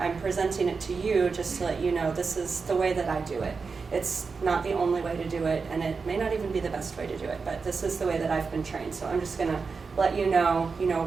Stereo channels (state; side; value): quieter; left; 4.9 dB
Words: presenting it to you just to let you know this is the way that I do it. It's not the only way to do it, and it may not even be the best way to do it, but this is the way that I've been trained. So I'm just going to let you know,